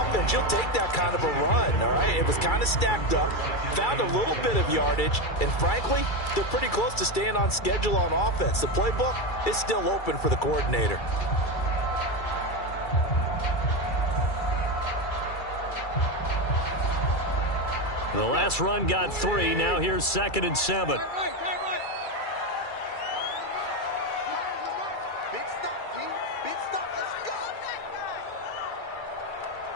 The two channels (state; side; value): late; right; 2.3 ms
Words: you'll take that kind of a run, all right? It was kind of stacked up, found a little bit of yardage, and frankly, they're pretty close to staying on schedule on offense. The playbook is still open for the coordinator. The last run got 3. Now here's 2nd and 7.